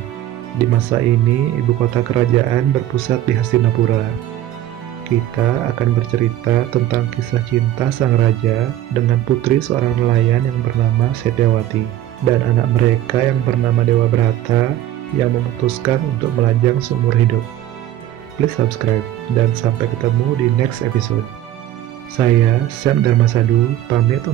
Di masa ini, ibu kota kerajaan berpusat di Hastinapura. Kita akan bercerita tentang kisah cinta sang raja dengan putri seorang nelayan yang bernama Setyawati dan anak mereka yang bernama Dewa Brata yang memutuskan untuk melajang seumur hidup. Please subscribe dan sampai ketemu di next episode. Saya Sam Dharmasadu pamit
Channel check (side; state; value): left; quieter; 12.9 dB